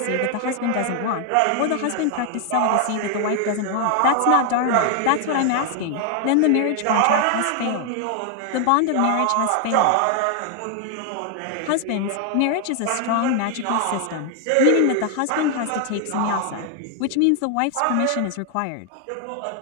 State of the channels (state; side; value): different; both; correlation 0.00